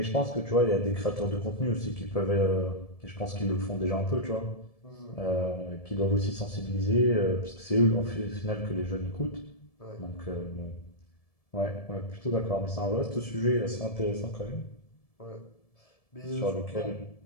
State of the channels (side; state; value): right; late; 1.7 ms